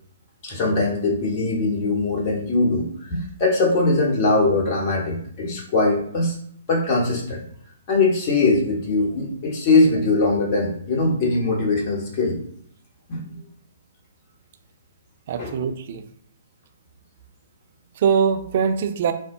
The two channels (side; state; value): both; inverted; correlation -0.45